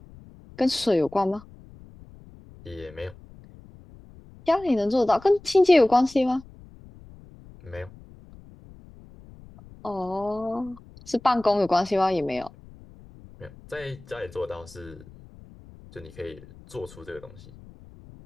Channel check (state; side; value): noise; left; rumble, 21 dB below the sound